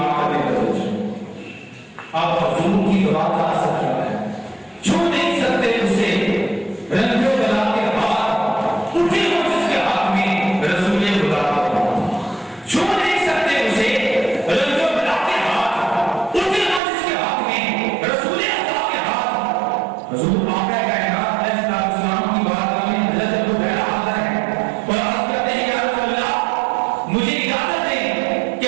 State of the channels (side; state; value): left; drops out; at 16.8 s